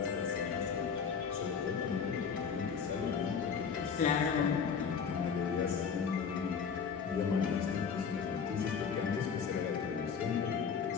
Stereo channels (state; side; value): quieter; right; 6.4 dB